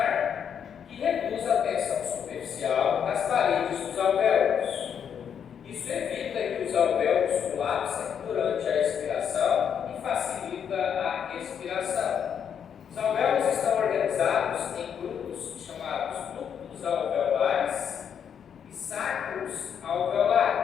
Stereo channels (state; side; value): quieter; right; 8.0 dB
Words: que reduz a tensão superficial nas paredes dos alvéolos. Isso evita que os alvéolos colapsem durante a expiração e facilita a respiração. Os alvéolos estão organizados em grupos chamados ductos alvéolos